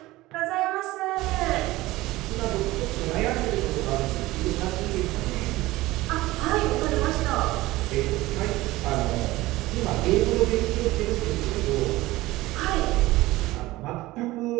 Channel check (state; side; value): quieter; left; 18.5 dB